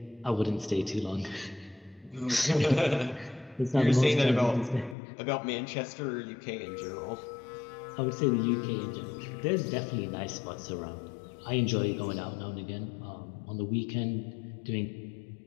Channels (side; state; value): right; drops out; at 5.0 s